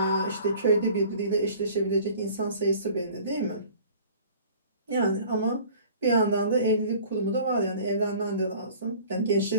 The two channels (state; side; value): inverted; both; correlation -0.47